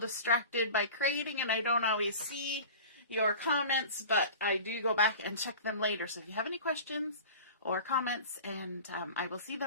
by creating and I don't always see your comments, but I do go back and check them later. So if you have any questions or comments, and I will see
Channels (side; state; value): both; inverted; correlation -0.37